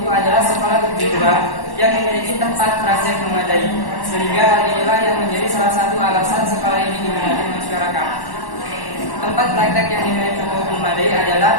adalah sekolah kejuruan yang memiliki tempat praktek memadai, sehingga hal inilah yang menjadi salah satu alasan sekolah ini diminati masyarakat. Tempat praktek yang dimiliki cukup memadai adalah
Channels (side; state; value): right; late; 1.1 ms